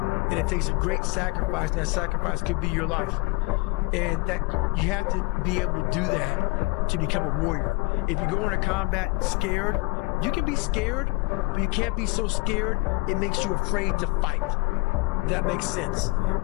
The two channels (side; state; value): right; quieter; 26.3 dB